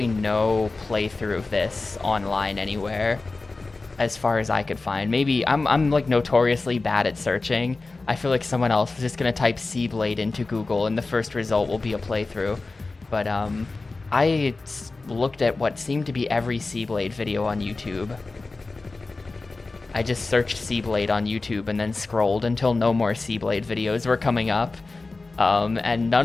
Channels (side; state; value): right; quieter; 3.6 dB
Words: no playthrough of this online anywhere, as far as I could find. Maybe I'm like notoriously bad at searching. I feel like someone else is just gonna type SeaBlade into Google and the first result will be a playthrough. But I looked at what seemed to be every SeaBlade video on YouTube. I just searched SeaBlade on YouTube and then scrolled until no more SeaBlade videos were coming up. And